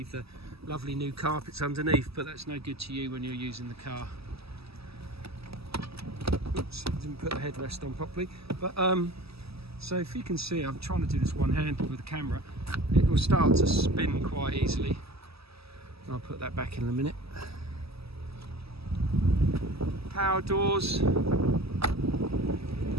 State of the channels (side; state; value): left; late; 0.77 ms